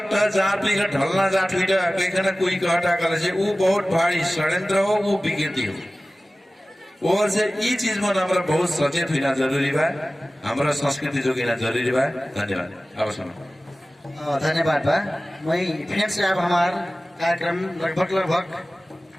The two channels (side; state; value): both; normal; correlation 0.97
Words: जहाँ पे ढलना जाट हुई कहना कोई कहता कल से वो बहुत भारी षड्यंत्र हो वो विकृति हो और से ये चीज में हमारा बहुत सचेत होना जरूरी बा हमारा संस्कृति जोगिना जरूरी बा। धन्यवाद। अब सुनो धन्यवाद बा मैं फिर से अब हमार कार्यक्रम लगभग